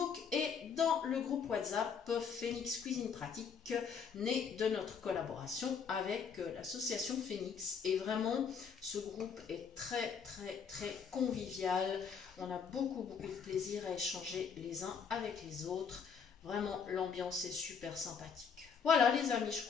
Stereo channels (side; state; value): right; quieter; 6.5 dB